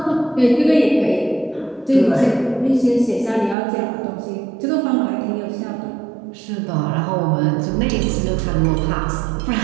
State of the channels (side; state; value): left; drops out; at 3.6 s